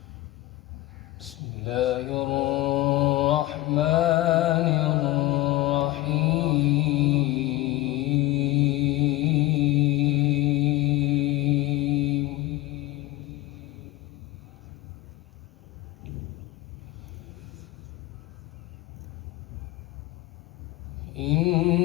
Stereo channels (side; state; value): right; quieter; 18.2 dB